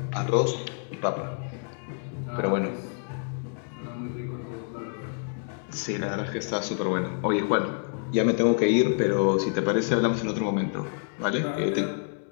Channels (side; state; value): right; silent; 60 dB below the other